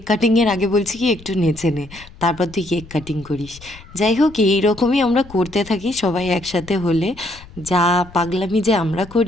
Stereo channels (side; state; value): left; noise; rumble, 20 dB below the sound